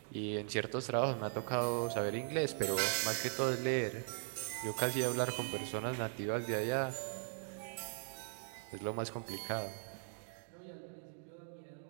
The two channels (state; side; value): silent; left; digital silence